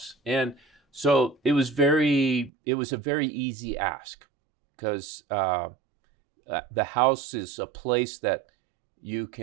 And so it was a very easy ask, because the house is a place that you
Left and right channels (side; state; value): left; drops out; at 2.5 s